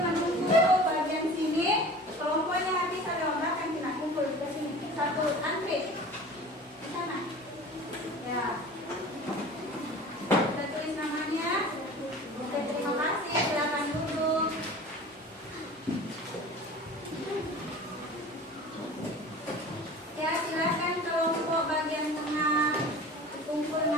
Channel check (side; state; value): both; normal; correlation 0.40